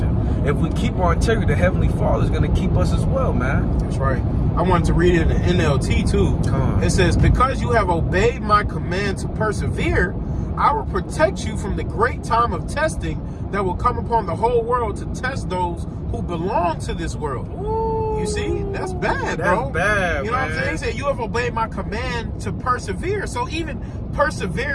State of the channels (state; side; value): identical; both; correlation 1.00